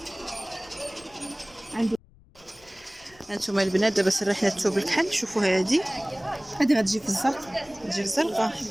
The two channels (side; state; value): left; noise; rumble, 27 dB below the sound